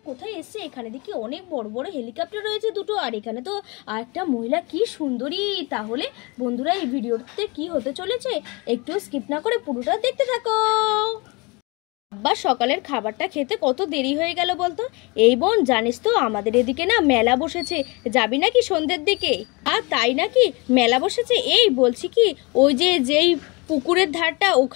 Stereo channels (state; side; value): quieter; right; 27.2 dB